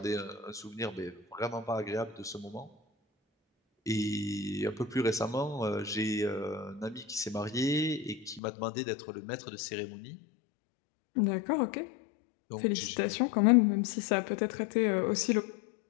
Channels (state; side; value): drops out; right; at 8.4 s